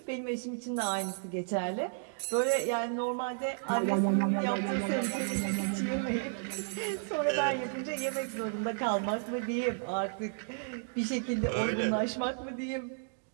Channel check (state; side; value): silent; left; digital silence